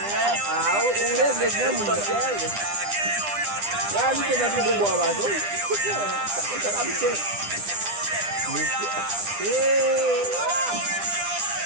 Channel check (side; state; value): left; late; 9.9 ms